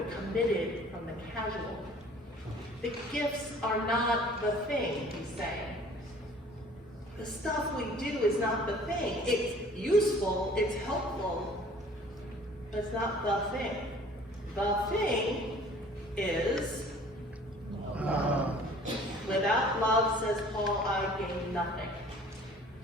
committed from the casual. The gifts are not the thing, he's saying. The stuff we do is not the thing. It's useful, it's helpful, but it's not the thing. The thing is love. Without love, says Paul, I gain nothing.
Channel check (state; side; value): normal; both; correlation 0.51